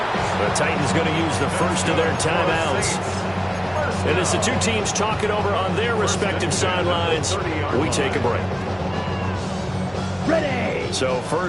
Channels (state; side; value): noise; left; hum, 22 dB below the sound